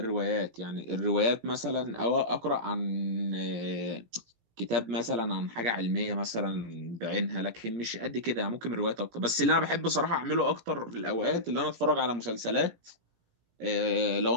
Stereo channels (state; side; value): late; left; 17 ms